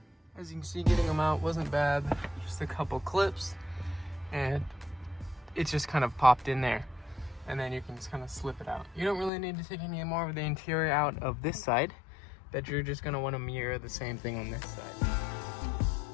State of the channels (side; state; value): right; drops out; at 9.3 s